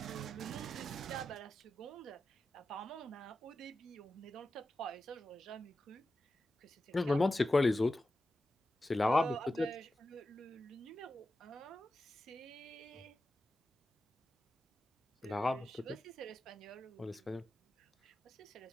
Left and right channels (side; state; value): both; normal; correlation 0.91